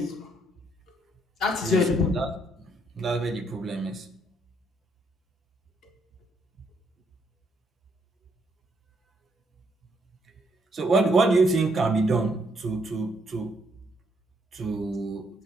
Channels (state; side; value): normal; both; correlation 0.72